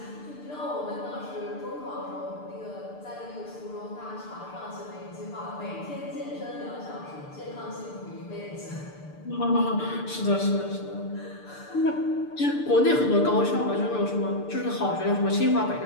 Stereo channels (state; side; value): late; right; 6.8 ms